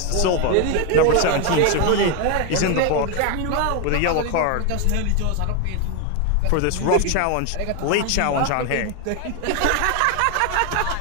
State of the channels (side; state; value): both; different; correlation 0.01